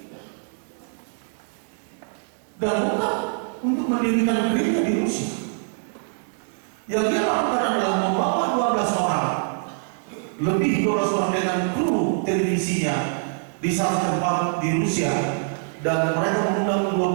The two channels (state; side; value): silent; left; digital silence